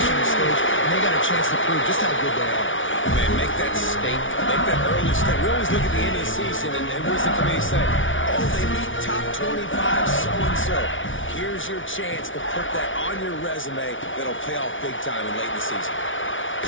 stage, and they got a chance to prove just how good they are. Man, make that statement. Make that early step. We always look at the end of the season, and what does the committee say? Oh, they beat top 25 so-and-so. Here's your chance to put that on your resume that'll pay off big time and late in the season.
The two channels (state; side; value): late; right; 0.57 ms